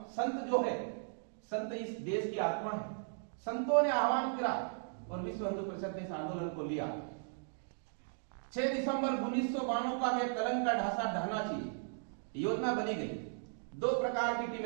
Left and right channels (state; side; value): silent; left; digital silence